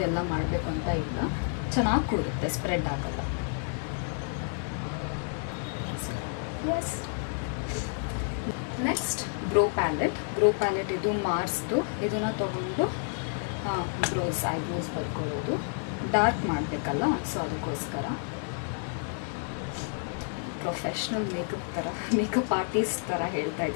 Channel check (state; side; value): silent; right; 58 dB below the other